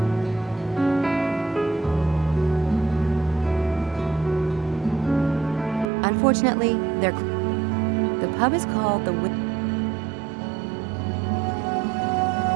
Unfortunately, the pub is called the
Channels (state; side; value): drops out; left; at 5.9 s